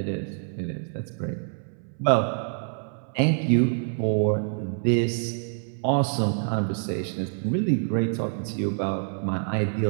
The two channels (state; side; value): silent; left; 61 dB below the other